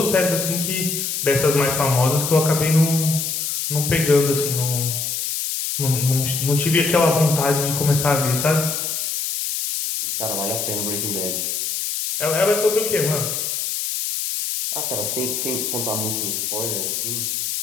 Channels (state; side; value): noise; left; hiss, 2 dB below the sound